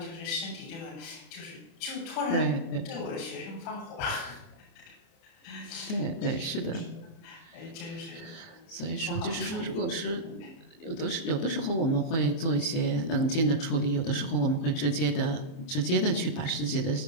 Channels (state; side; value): late; right; 30 ms